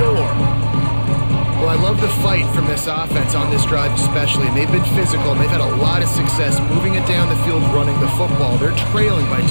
Well, I love the fight from this offense on this drive especially, and they've been physical, and they've had a lot of success moving it down the field, running the football. They're trailing by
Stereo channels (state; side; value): inverted; both; correlation -1.00